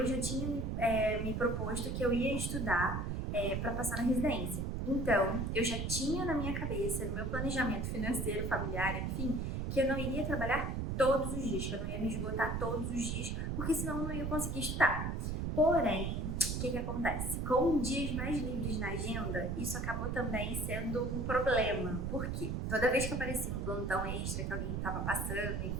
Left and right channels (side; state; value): right; noise; rumble, 1 dB below the sound